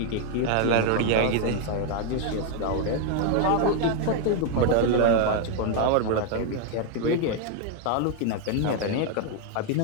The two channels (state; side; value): different; both; correlation 0.00